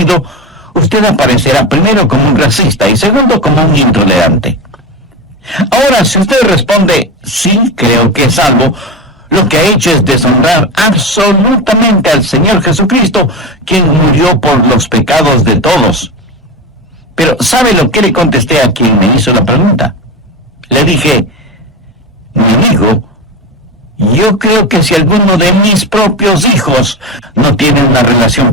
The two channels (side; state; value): both; normal; correlation 0.21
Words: usted aparecerá primero como un racista y segundo como un intolerante. Ahora, si usted responde: sí, creo que es salvo, lo que ha hecho es deshonrar absolutamente al Señor Jesucristo, quien murió por los pecados de todos. Pero ¿sabe lo que le contesté a quien me hizo la pregunta? Le dije: mi amigo, yo creo que si alguno de mis propios hijos no tiene una relación